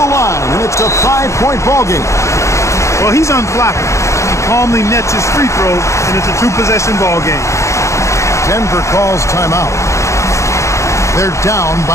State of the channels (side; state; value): right; late; 0.14 ms